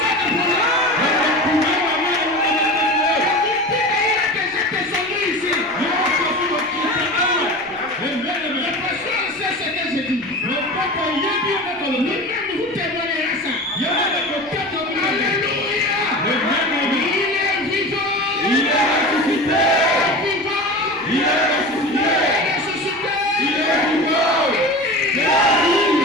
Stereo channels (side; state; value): left; noise; rumble, 29 dB below the sound